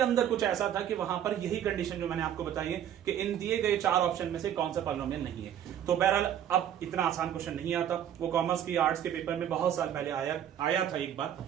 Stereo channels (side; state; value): left; quieter; 10.1 dB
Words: कुछ ऐसा था कि वहां पर यही कंडीशन जो मैंने आपको बताई है कि इन दिए गए 4 ऑप्शन में से कौन सा पॉलिनोमियल नहीं है। तो बहरहाल अब इतना आसान क्वेश्चन नहीं आता, वो कॉमर्स की आर्ट्स के पेपर में बहुत साल पहले आया था एक बार,